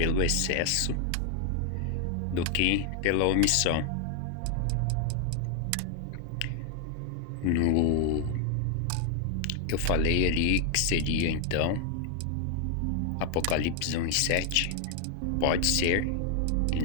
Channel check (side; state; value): both; different; correlation 0.00